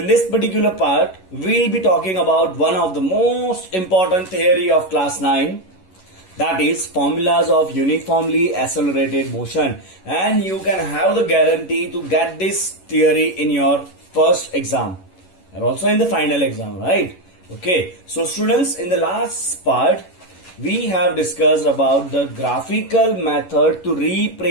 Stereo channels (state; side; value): late; right; 11 ms